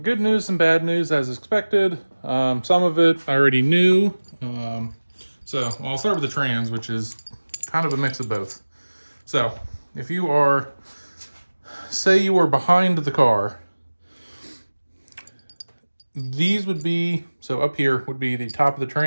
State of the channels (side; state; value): both; inverted; correlation -1.00